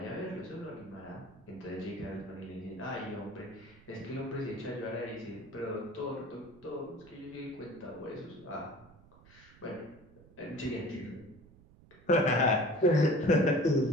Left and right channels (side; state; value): right; noise; rumble, 24 dB below the sound